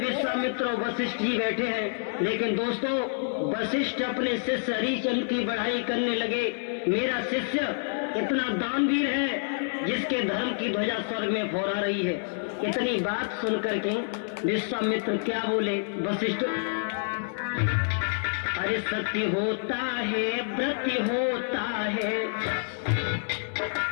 और वशिष्ठ जी बैठे हैं। लेकिन दोस्तों, वशिष्ठ अपने शिष्य हरिश्चंद्र की बढ़ाई करने लगे। मेरा शिष्य इतना दानवीर है जिसके धर्म की ध्वजा स्वर्ग में फहरा रही है। इतनी बात सुनकर के विश्वामित्र क्या बोले, वशिष्ठ, अरे सत्य होता है, व्रत होता है,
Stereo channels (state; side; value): silent; right; 59 dB below the other